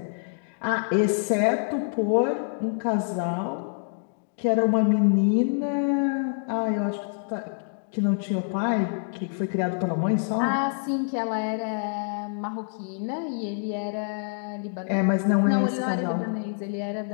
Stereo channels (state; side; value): silent; right; digital silence